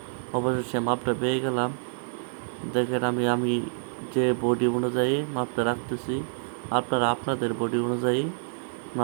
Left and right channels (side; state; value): left; silent; digital silence